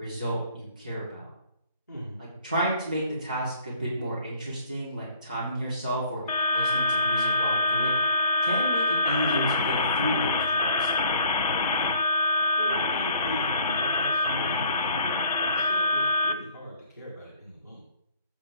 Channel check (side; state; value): both; inverted; correlation -0.57